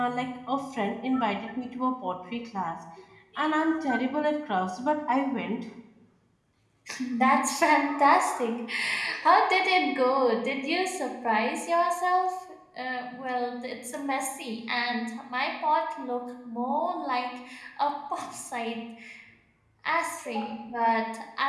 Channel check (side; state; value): both; identical; correlation 1.00